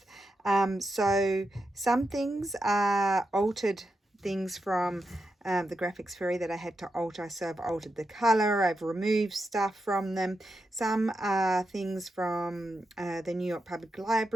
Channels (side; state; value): both; normal; correlation 0.87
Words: So some things are altered things from the graphics fairy that I had to alter. So I've altered the color, I've removed stuff from them. Some are things from the New York Public